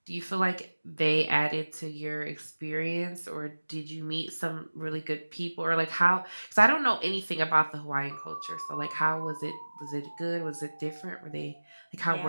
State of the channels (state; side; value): inverted; both; correlation -1.00